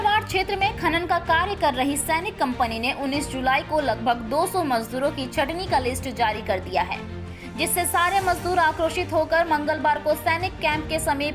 क्षेत्र में खनन का कार्य कर रही सैनिक कंपनी ने 19 जुलाई को लगभग 200 मजदूरों की छटनी का लिस्ट जारी कर दिया है, जिससे सारे मजदूर आक्रोशित होकर मंगलवार को सैनिक कैंप के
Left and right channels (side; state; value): both; identical; correlation 1.00